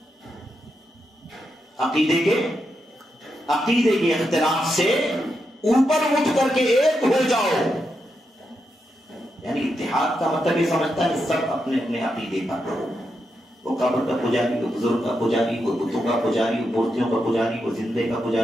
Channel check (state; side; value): normal; both; correlation 0.85